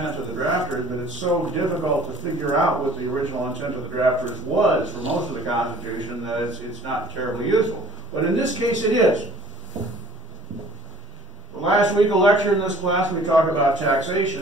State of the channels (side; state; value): both; normal; correlation 0.52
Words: of the drafters, but it's so difficult to figure out what the original intent of the drafters was for most of the Constitution that it's not terribly useful. But in this case, it is. Last week, a lecture in this class, we talked about